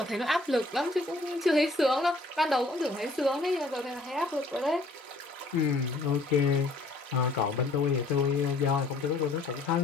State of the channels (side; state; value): right; quieter; 3.0 dB